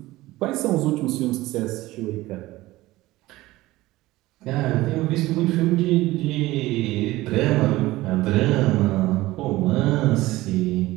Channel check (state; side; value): quieter; left; 18.1 dB